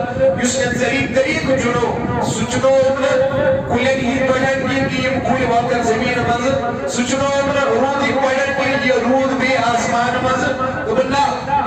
yuskan zarid tariq juno suchno kulen hi padan ki kul wakar zameen maz suchno rood hi padan ki rood be asman maz dugunna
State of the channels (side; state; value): right; noise; hum, 26 dB below the sound